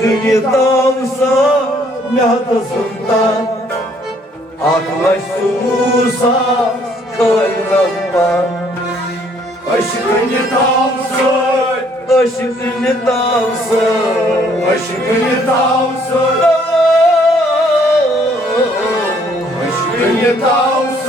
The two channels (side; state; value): both; normal; correlation 0.64